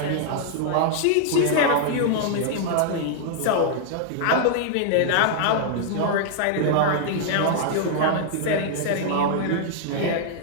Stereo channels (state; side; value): different; both; correlation -0.01